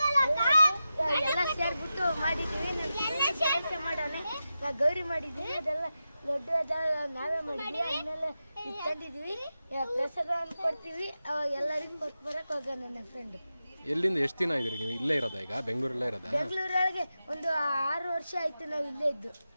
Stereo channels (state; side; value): inverted; both; correlation -0.91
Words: ಎಲ್ಲ ಸೇರ್ಬಿಟ್ಟು ಮಾಡಿದ್ದೀವಿ. ಕೆಲಸ ಮಾಡೋಣ, ನಾವು ಗೌರಿ ಮಾಡಿದ್ದೀವಿ. ಅದೆಲ್ಲ ದೊಡ್ಡ ನಾವೇ ಮಾಡಿದ್ವಿ. ಆಮೇಲೆ ತಂದಿದ್ವಿ, ಪ್ರಸಾದ ಕೊಡ್ತೀವಿ. ಅವಾಗ ಎಲ್ಲರಿಗೂ ಕೊಟ್ಟು ಬರಕ್ಕೆ ಹೋಗ ನನ್ನ ಫ್ರೆಂಡ್. ಎಲ್ಲಿಂದ ಎಷ್ಟು ದಿನ ಇದ್ರಿ ನೀವು? ಇಲ್ಲೇ ಇರೋದಾ? ಈಗ ಬೆಂಗಳೂರಲ್ಲೇ ಇರೋದಾ? ಬೆಂಗಳೂರೊಳಗೆ ಒಂದು 6 ವರ್ಷ ಆಯ್ತು ನಾವು ಇಲ್ಲೇ ಇದ್ದು.